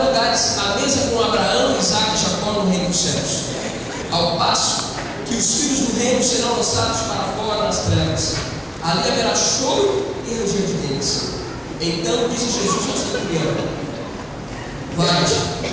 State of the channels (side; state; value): both; identical; correlation 1.00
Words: lugares à mesa com Abraão, Isaque e Jacó no reino dos céus. Ao passo que os filhos do reino serão lançados para fora nas trevas. Ali haverá choro e ranger de dentes. Então disse Jesus ao centurião: Vai-te,